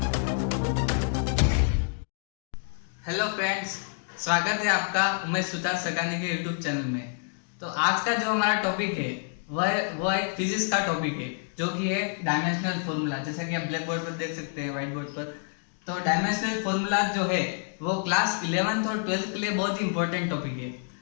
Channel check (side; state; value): right; silent; 59 dB below the other